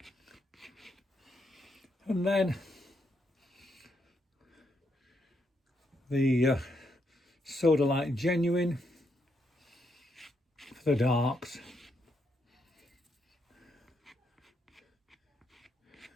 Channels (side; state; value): both; normal; correlation 0.78